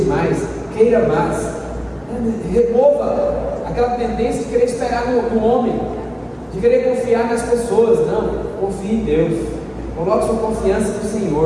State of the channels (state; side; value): identical; both; correlation 1.00